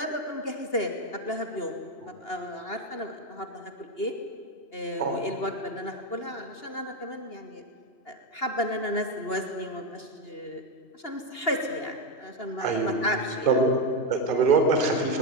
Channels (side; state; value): right; late; 2.8 ms